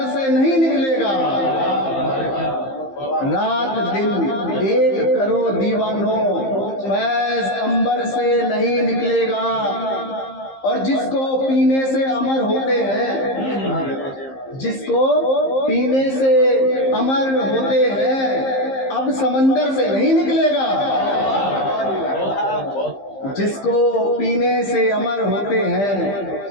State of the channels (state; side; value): late; right; 15 ms